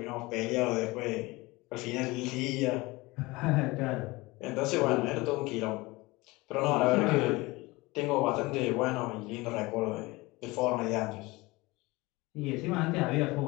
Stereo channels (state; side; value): quieter; right; 22.3 dB